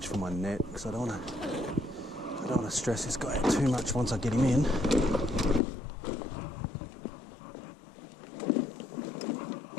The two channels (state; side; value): drops out; right; at 5.6 s